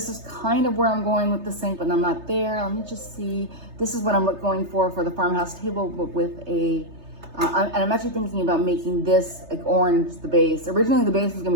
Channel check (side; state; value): left; late; 3.3 ms